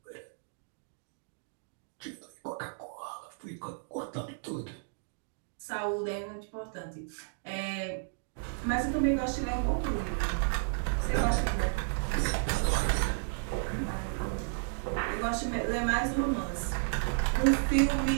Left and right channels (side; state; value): left; silent; digital silence